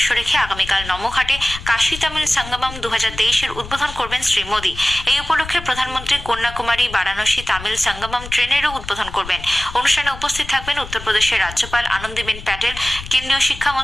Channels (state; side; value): noise; left; rumble, 13 dB below the sound